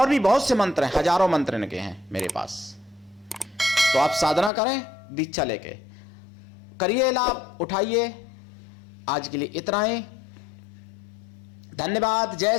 भी बहुत से मंत्र हैं, हजारों मंत्र इनके हैं मेरे पास। तो आप साधना करें दीक्षा लेके, करिए लाभ, उठाइए। आज के लिए इतना ही, धन्यवाद। जय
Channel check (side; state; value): right; drops out; at 4.5 s